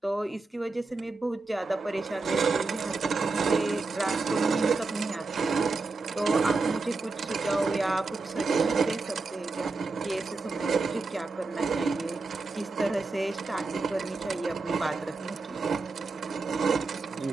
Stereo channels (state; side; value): quieter; left; 3.8 dB